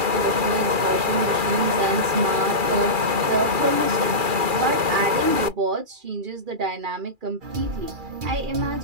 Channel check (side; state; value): left; late; 2.4 ms